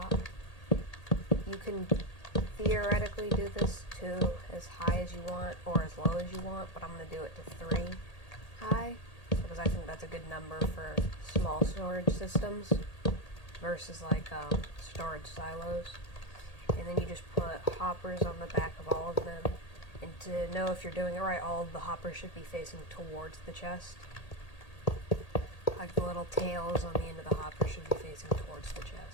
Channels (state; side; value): late; right; 1.8 ms